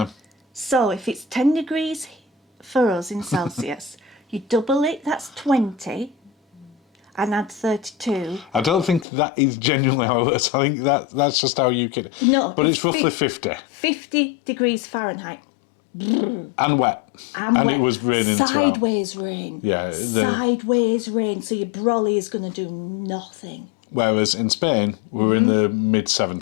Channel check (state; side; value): drops out; right; at 9.1 s